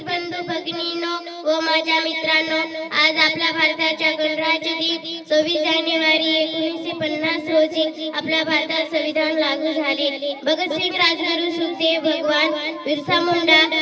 बंधू भगिनींनो व माझ्या मित्रांनो, आज आपल्या भारताच्या गणराज्य दिन 26 जानेवारी 1950 रोजी आपल्या भारतात संविधान लागू झाले. भगतसिंग, राजगुरू, सुखदेव, भगवान बिरसा मुंडा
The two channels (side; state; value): both; identical; correlation 1.00